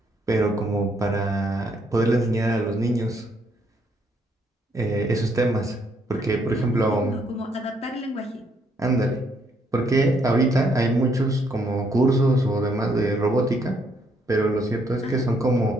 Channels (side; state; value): both; normal; correlation 0.71